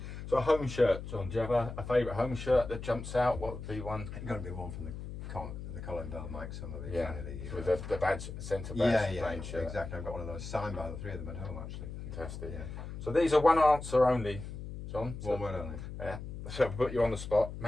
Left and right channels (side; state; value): left; noise; hum, 9 dB below the sound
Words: So a home shirt, John. Do you have a favourite home shirt that jumps out? What would be one? It's got to be one from the Colin Bell, Mike Summerby. Yeah, with the badge, centre badge, plain shirt. Exactly. I've got one of those signed by the three of them at home, actually. Fantastic. Yeah. So these are one answer only, John. So, One word only. Yeah. So I'll put you on the spot.